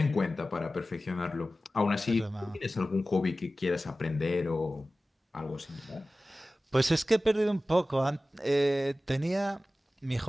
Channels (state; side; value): normal; both; correlation 0.96